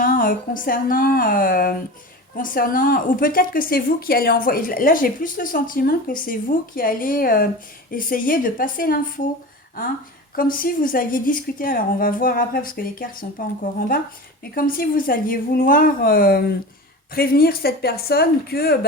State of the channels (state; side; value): normal; both; correlation 0.31